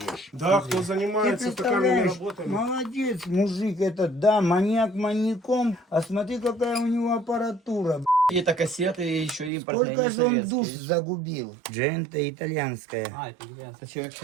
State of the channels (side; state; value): left; drops out; at 9.5 s